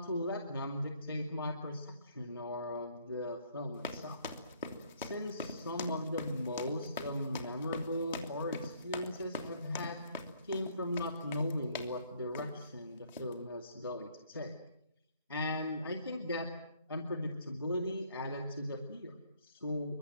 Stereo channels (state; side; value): inverted; both; correlation -0.64